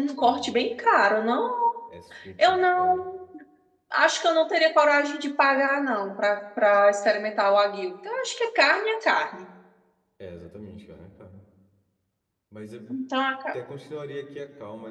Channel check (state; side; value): identical; both; correlation 1.00